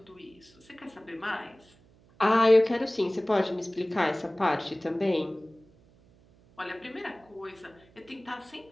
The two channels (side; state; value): right; noise; hum, 29 dB below the sound